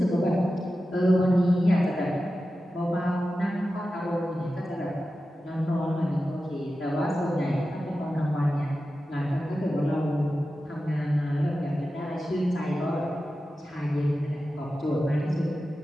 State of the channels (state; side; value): normal; both; correlation 0.93